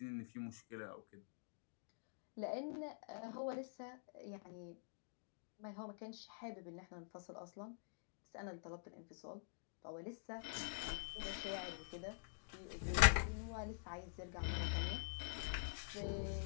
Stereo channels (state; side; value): silent; right; digital silence